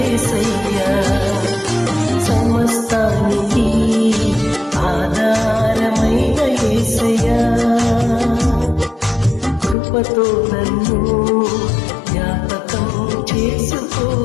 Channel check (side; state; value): right; drops out; at 9.8 s